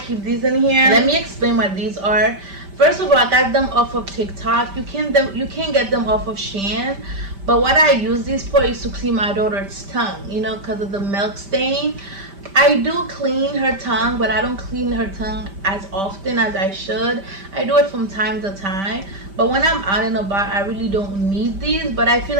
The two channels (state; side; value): late; left; 5.1 ms